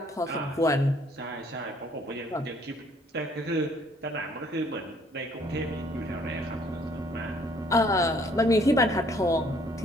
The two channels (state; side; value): normal; both; correlation 0.62